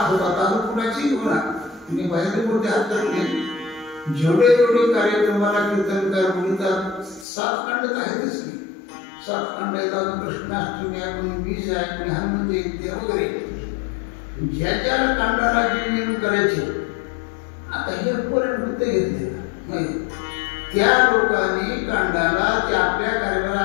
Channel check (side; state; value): right; drops out; at 7.2 s